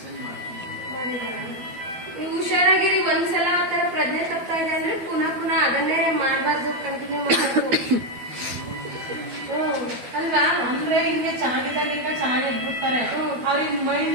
ನೀವು ಹುಷಾರಾಗಿರಿ. ಒಂದ್ಸಲ ಆತರ ಪ್ರಜ್ಞೆ ತಪ್ತಾ ಇದೆ ಅಂದ್ರೆ ಪುನಃ ಅದನ್ನೇ ಮಾಡಬಾರ್ದು, ಕಂಟಿನ್ಯೂ ಮಾಡಬಾರ್ದು ಅಲ್ವಾ? ಅಂದ್ರೆ ಹಿಂಗೆ ಚೆನ್ನಾಗಿದ್ದಾಗ ಈಗ ಚೆನ್ನಾಗಿ ಇಟ್ಬಿಡ್ತಾರೆ. ಅವ್ರಿಗೆ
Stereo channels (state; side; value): late; left; 12 ms